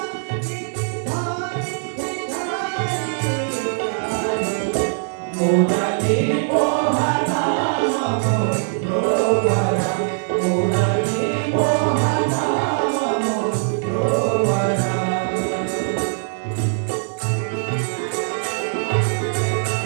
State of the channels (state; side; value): silent; left; digital silence